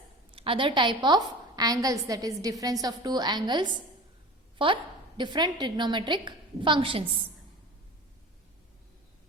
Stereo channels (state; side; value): normal; both; correlation 0.37